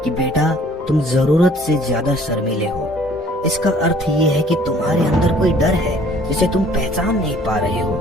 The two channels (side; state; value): both; normal; correlation 0.55